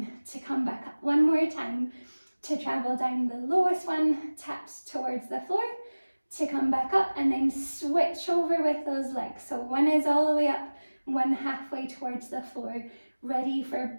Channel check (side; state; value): both; inverted; correlation -1.00